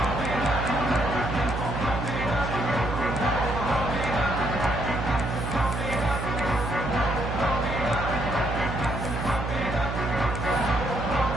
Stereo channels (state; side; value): noise; right; hum, 4 dB below the sound